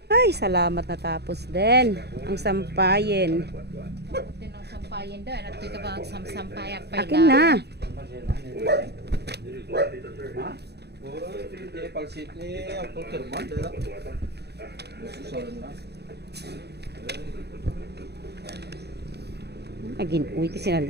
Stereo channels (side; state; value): left; late; 0.48 ms